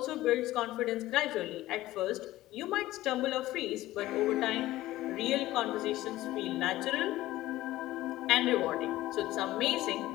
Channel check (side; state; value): right; quieter; 16.2 dB